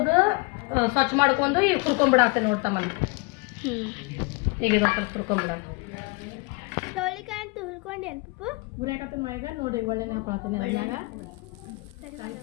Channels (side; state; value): right; quieter; 27.2 dB